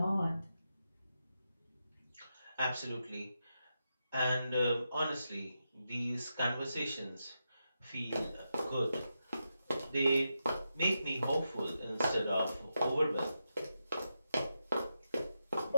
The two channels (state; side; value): inverted; both; correlation -0.87